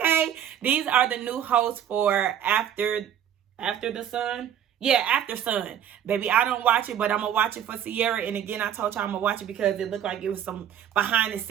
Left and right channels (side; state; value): left; quieter; 9.8 dB